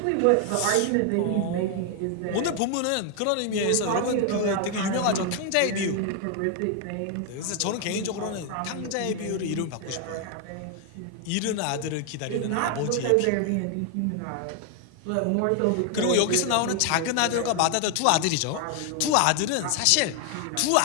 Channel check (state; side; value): different; both; correlation 0.00